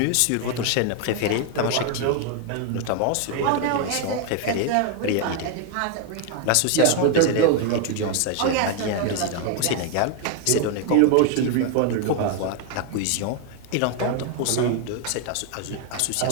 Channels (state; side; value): different; both; correlation 0.00